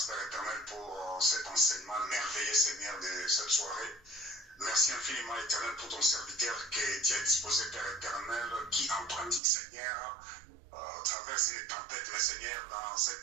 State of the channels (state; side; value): drops out; left; at 9.4 s